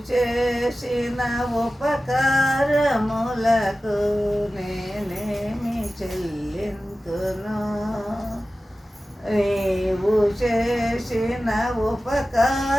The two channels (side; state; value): both; normal; correlation 0.95